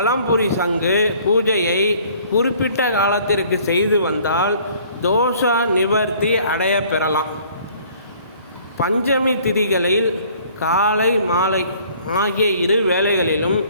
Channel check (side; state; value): both; inverted; correlation -0.56